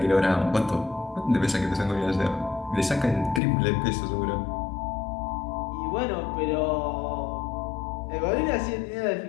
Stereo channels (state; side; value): drops out; right; at 3.4 s